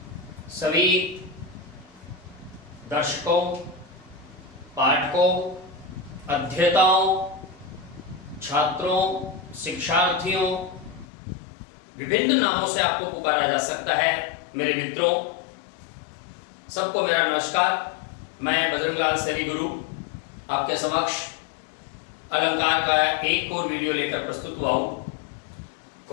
सभी दर्शकों, पाठकों, अध्येताओं, छात्रों, शिक्षार्थियों, विभिन्न नामों से आपको पुकारा जा सकता है। मेरे मित्रों, सबको मेरा नमस्कार। मैं बजरंगलाल सैनी गुरु आपके समक्ष अलंकार का एक और वीडियो लेकर प्रस्तुत हुआ हूं।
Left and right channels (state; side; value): drops out; right; at 11.1 s